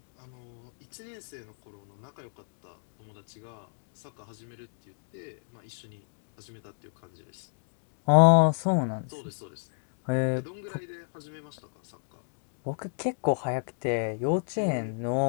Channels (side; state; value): right; silent; digital silence